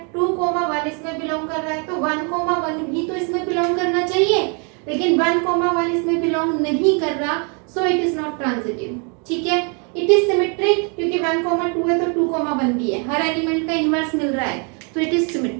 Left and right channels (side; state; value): left; quieter; 36.5 dB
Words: 2, 1 इसमें बिलोंग कर रहा है, तो 1, 1 भी तो इसमें बिलोंग करना चाहिए, लेकिन 1, 1 इसमें बिलोंग नहीं कर रहा, सो इट इज नॉट ट्रांजिटिव, ठीक है। इट इज सिमेट्रिक क्योंकि 1, 2 है तो 2, 1 भी है, हर एलिमेंट का इनवर्स मिल रहा है, तो इट इज